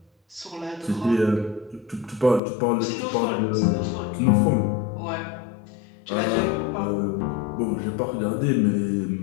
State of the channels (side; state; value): right; drops out; at 2.4 s